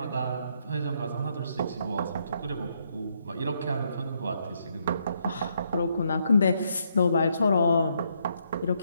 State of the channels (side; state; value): both; inverted; correlation -0.75